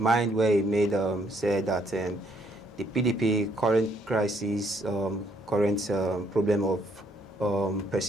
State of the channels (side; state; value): both; normal; correlation 0.68